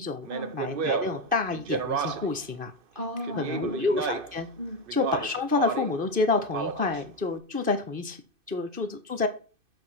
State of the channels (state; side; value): late; left; 2.6 ms